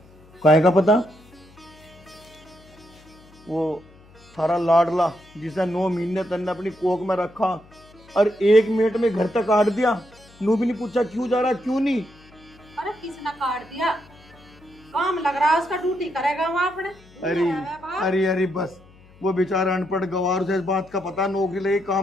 काहे का पता? वो थारा लाडला जिसे 9 महीने तन्ने अपनी कोख में रखा और 1 मिनट में घर तक काट दिया, नू भी नहीं पूछा क्यों जा रहा क्यों नहीं। अरे किसने काट दिया? काम लग रहा है उसका, ड्यूटी करेगा वहाँ अपने। अरे बस, वो बेचारा अनपढ़ गवार, उसे इस बात का पता नौकरी लगी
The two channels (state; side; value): noise; left; hum, 26 dB below the sound